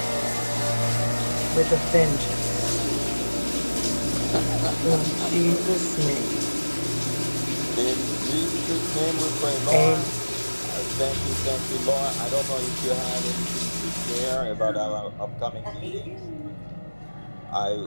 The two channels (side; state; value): both; inverted; correlation -1.00